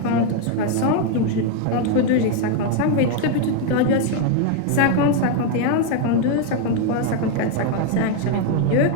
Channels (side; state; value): both; different; correlation 0.01